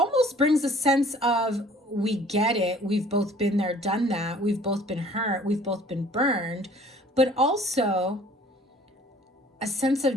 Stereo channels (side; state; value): both; normal; correlation 0.53